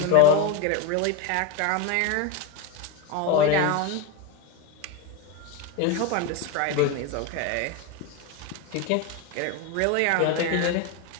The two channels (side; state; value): both; different; correlation 0.03